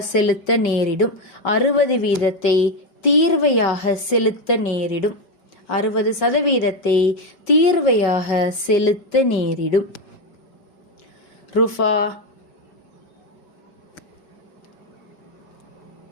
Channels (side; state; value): right; late; 5.3 ms